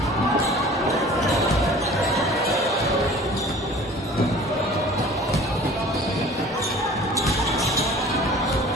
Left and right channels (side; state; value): both; normal; correlation 0.46